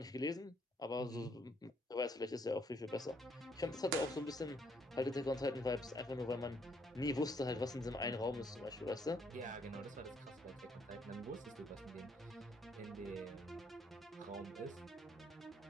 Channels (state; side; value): normal; both; correlation 0.69